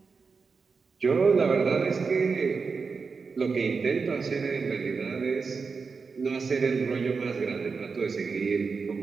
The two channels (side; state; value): left; quieter; 4.9 dB